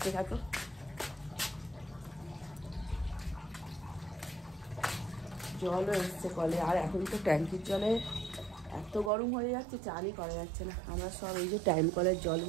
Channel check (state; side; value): drops out; left; at 9.1 s